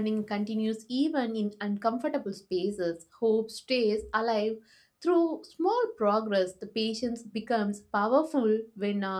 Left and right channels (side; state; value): both; identical; correlation 1.00